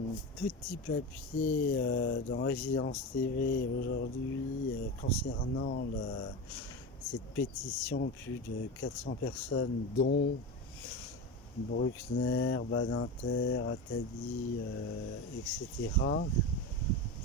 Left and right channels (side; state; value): both; normal; correlation 0.23